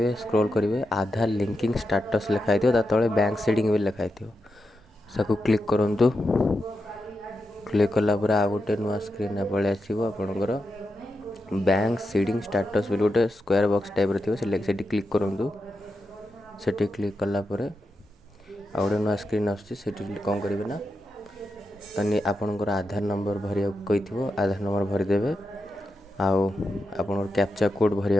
स्क्रॉल करेंगे आधार लिंकिंग स्टेटस लिखाई तले बैंक सेटिंग भी लिखाई सबको क्लिक करूँ। क्लिक कलापर आ गोटे नुआ स्क्रीन पलि आसो आपणकर बैंक सीडिंग स्टेटस भी गोटे स्क्वायर बॉक्स टाइप थी क्लिक करूँ। से क्लिक कलापर आ गोटे नुआ स्क्रीन आसी कौन करेंगे ना तनी आपणकर आधार नंबर भरिया कही आधार नंबर भरीदे आउ कैप्चा कोड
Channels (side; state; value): both; normal; correlation 0.87